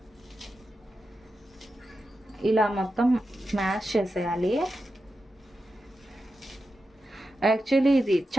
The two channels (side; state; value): both; normal; correlation 0.90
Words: ఇలా మొత్తం మ్యాష్ చేసేయాలి. యాక్చువల్లీ ఇది